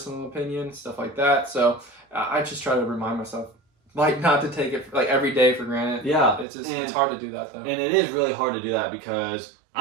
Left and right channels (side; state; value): left; drops out; at 6.5 s